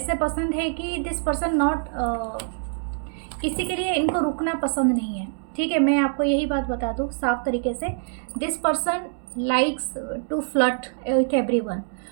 पसंद है कि दिस पर्सन नॉट किसी के लिए इनको रुकना पसंद नहीं है। ठीक है, मैं आपको यही बात बता दूँ साफ तरीके से, this person likes to flirt with everyone.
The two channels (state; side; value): silent; left; digital silence